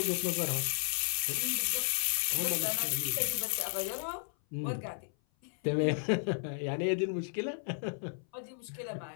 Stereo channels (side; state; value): right; silent; 55 dB below the other